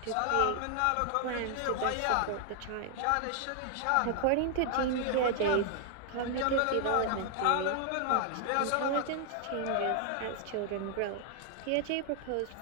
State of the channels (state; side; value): different; both; correlation 0.00